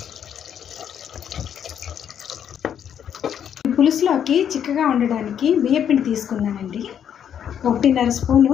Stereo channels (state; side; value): quieter; right; 8.9 dB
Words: పులుసులోకి చిక్కగా ఉండడానికి బియ్యపిండి తీసుకున్నానండి. 1.5 స్పూను